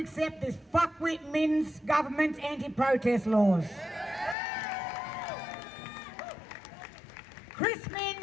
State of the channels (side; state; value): right; drops out; at 4.4 s